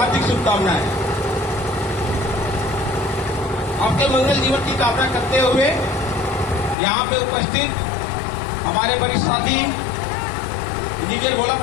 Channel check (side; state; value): right; drops out; at 6.8 s